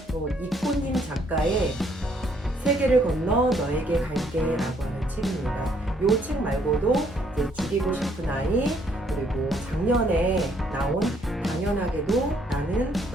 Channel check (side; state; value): both; normal; correlation 0.67